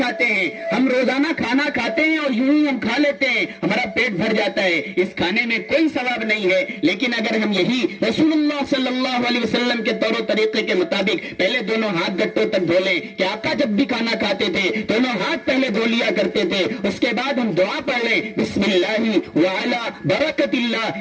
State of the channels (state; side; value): identical; both; correlation 1.00